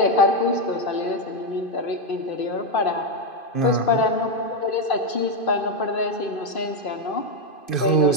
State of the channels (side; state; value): right; late; 2.5 ms